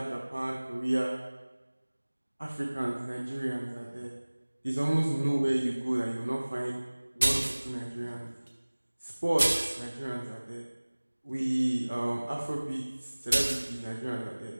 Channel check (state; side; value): inverted; both; correlation -1.00